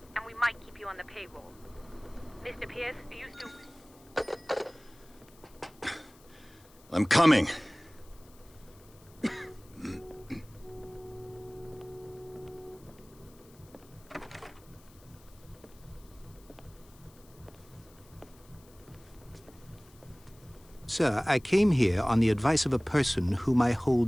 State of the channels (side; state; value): left; noise; hiss, 26 dB below the sound